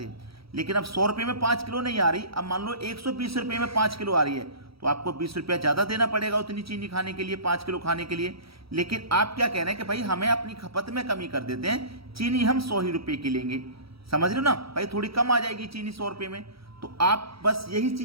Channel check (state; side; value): late; left; 0.76 ms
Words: लेकिन अब 100 रुपये में 5 किलो नहीं आ रही। अब मान लो 120 रुपये में 5 किलो आ रही है, तो आपको 20 रुपया ज़्यादा देना पड़ेगा उतनी चीनी खाने के लिए, 5 किलो खाने के लिए। लेकिन आप क्या कह रहे हैं कि भाई हमें अपनी खपत में कमी कर देते हैं, चीनी हम 100 ही रुपये की लेंगे। समझ रहे हो ना भाई, थोड़ी कम आ जाएगी चीनी 100 रुपये में। तो आप बस यही